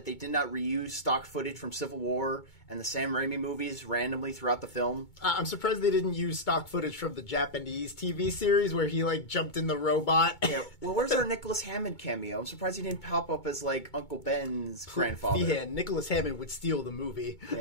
they did not reuse stock footage from Civil War and the Sam Raimi movies randomly throughout the film. I'm surprised they didn't use stock footage from the Japanese TV series where he, jumped in the robot. Yeah, well, where's our Nicholas Hammond cameo? I'm surprised he didn't pop up as, Uncle Ben's grandfather. Yeah, Nicholas Hammond would steal the movie.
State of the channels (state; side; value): late; right; 2.2 ms